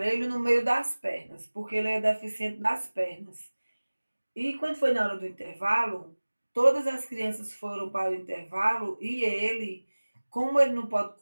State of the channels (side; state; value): both; inverted; correlation -1.00